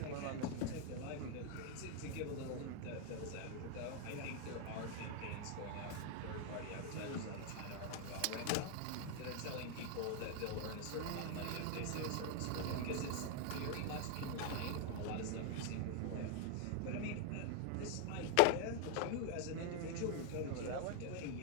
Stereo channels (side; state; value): both; different; correlation 0.00